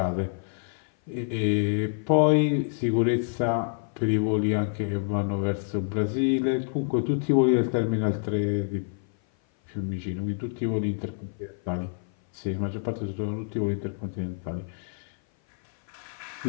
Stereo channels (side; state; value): right; silent; 57 dB below the other